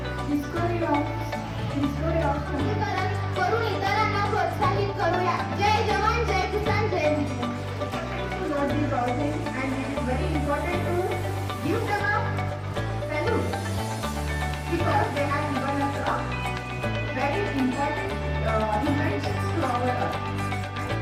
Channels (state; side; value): identical; both; correlation 1.00